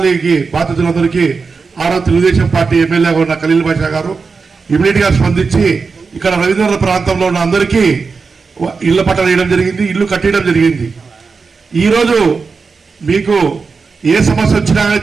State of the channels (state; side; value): quieter; left; 4.8 dB